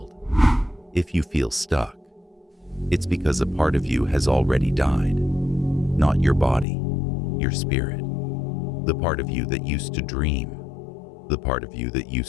If you feel stuck, it's because a part of you has already died. Not your body, your spirit. The part of you that used to dream. The part of you that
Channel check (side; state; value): right; drops out; at 6.7 s